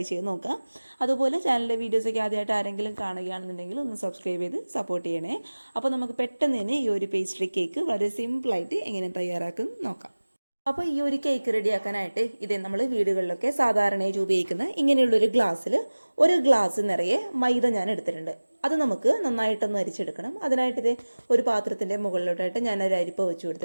ചെയ്ത് നോക്കുക. അതുപോലെ ചാനലിലെ വീഡിയോസൊക്കെ ആദ്യമായിട്ട് ആരെങ്കിലും കാണുകയാണെന്നുണ്ടെങ്കിൽ ഒന്ന് സബ്സ്ക്രൈബ് ചെയ്ത് സപ്പോർട്ട് ചെയ്യണേ. അപ്പോൾ നമുക്ക് പെട്ടെന്ന് തന്നെ ഈ ഒരു പേസ്ട്രി കേക്ക് വളരെ സിമ്പിളായിട്ട് എങ്ങനെ തയ്യാറാക്കും നോക്കാം. അപ്പോൾ ഈ ഒരു കേക്ക് റെഡിയാക്കാനായിട്ട് ഇതേ നമ്മൾ വീടുകളിലൊക്കെ സാധാരണയായി ഉപയോഗിക്കുന്ന ഇങ്ങനെയുള്ളൊരു ഗ്ലാസ്സിൽ ഒരു ഗ്ലാസ് നിറയെ മൈദ ഞാൻ എടുത്തിട്ടുണ്ട്. അത് നമുക്ക് നന്നായിട്ടൊന്ന് അരിച്ചെടുക്കണം. അതിനായിട്ട് ഇതേ ഒരു പാത്രത്തിൻ്റെ മുകളിലോട്ടായിട്ട് ഞാൻ ഒരു അരിപ്പ വെച്ച്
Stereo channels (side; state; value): both; inverted; correlation -1.00